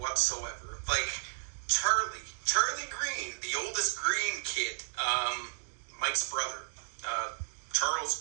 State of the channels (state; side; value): silent; left; digital silence